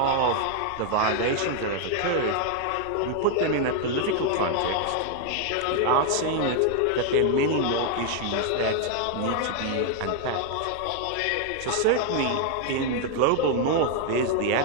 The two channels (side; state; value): both; different; correlation 0.00